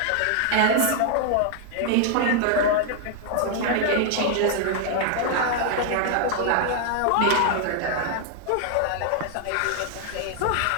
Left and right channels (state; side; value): different; both; correlation 0.00